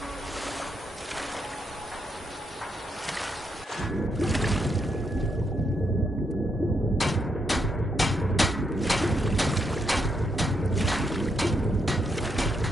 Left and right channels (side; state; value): both; normal; correlation 0.79